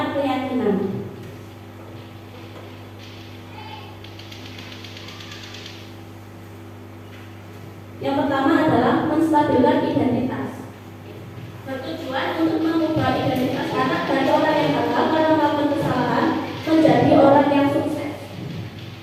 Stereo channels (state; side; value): identical; both; correlation 1.00